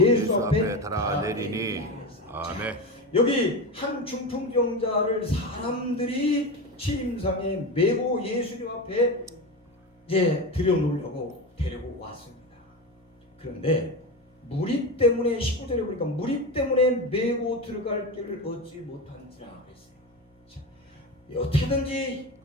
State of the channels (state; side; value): normal; both; correlation 0.21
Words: 앞에 달아내리니. 아멘. 여기 한 중풍병자를 사람들이 침상에 메고 예수님 앞에 이제 들여놓으려고 데리고 왔습니다. 그런데 무리 때문에 19절에 보니까 무리 때문에 메고 들어갈 길을 얻지 못한지라 그랬어요. 자, 어떻게든지